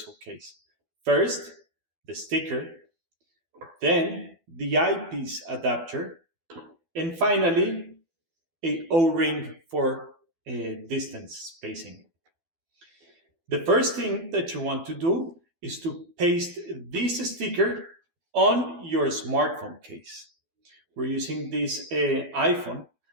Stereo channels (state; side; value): late; left; 12 ms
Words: case. First, the sticker, then the eyepiece adapter, and finally, a O-ring for distance spacing. The first thing that you want to do is to paste this sticker on your smartphone case. We're using this iPhone